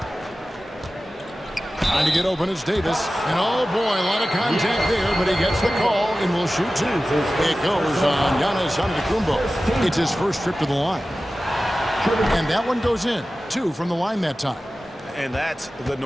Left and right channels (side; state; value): both; normal; correlation 0.95